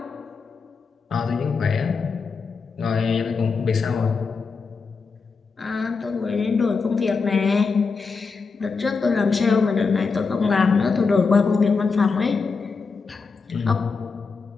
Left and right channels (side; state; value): right; quieter; 4.8 dB